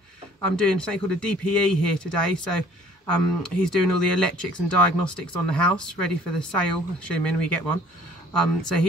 doing something called a DPE here today. So he's doing all the electrics and diagnostics on the house, ready for the sale, assuming we get one. So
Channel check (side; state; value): both; normal; correlation 0.55